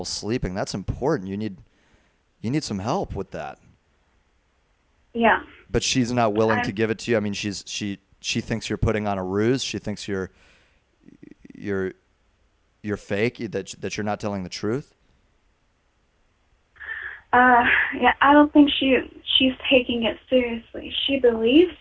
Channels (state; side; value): identical; both; correlation 1.00